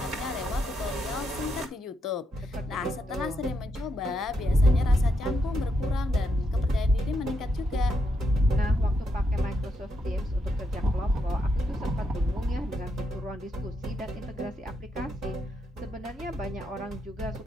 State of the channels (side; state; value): both; normal; correlation 0.81